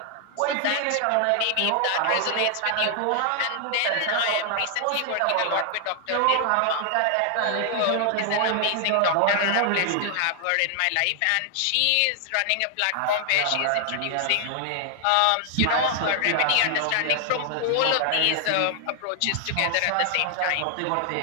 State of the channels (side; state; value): both; different; correlation 0.00